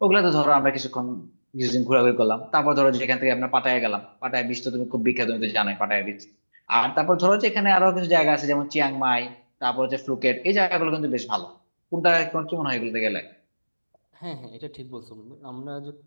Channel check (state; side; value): inverted; both; correlation -1.00